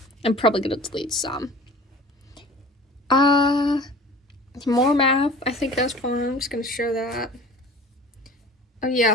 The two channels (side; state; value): both; normal; correlation 0.42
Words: I'm probably gonna delete some. More math. I think that's fun. I'm just gonna show that. Oh yeah,